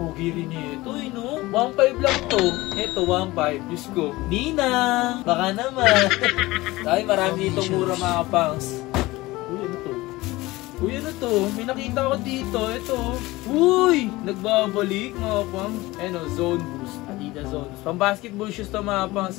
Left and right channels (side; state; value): right; quieter; 19.8 dB